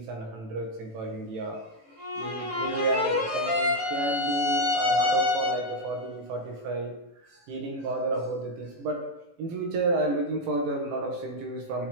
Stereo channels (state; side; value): late; left; 18 ms